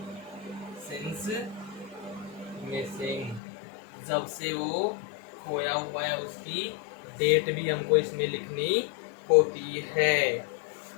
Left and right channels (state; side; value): drops out; right; at 3.4 s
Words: जब से वो खोया हुआ है उसकी डेट भी हमको इसमें लिखनी होती है।